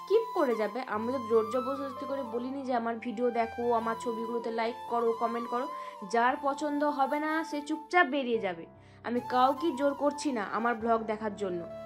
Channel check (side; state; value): both; identical; correlation 1.00